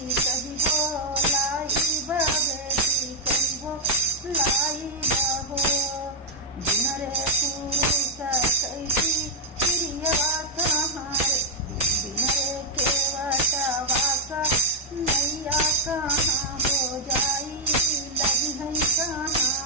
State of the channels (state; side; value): normal; both; correlation 0.01